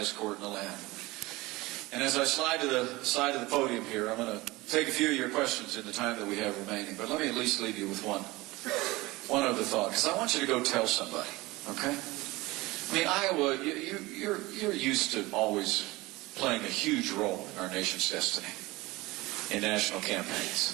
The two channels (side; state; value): left; quieter; 21.0 dB